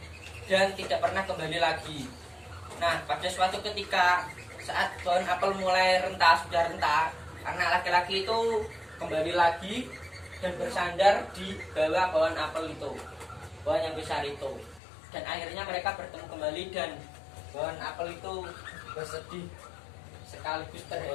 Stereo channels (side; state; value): right; drops out; at 14.8 s